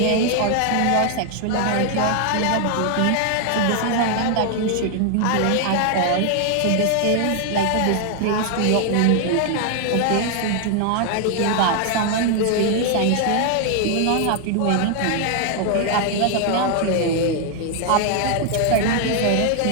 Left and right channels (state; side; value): different; both; correlation 0.00